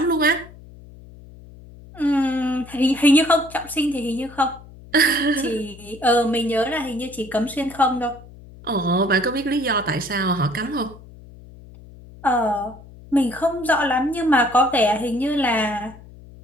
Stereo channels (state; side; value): noise; left; hum, 20 dB below the sound